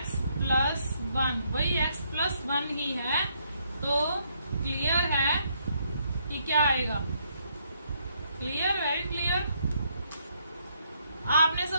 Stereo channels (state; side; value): inverted; both; correlation -0.73